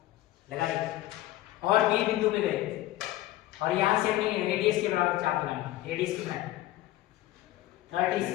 लगा दी और बी बिंदु पे गए और यहाँ से हमने रेडियस के बराबर चाप लगानी। रेडियस कितना है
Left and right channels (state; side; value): quieter; right; 15.6 dB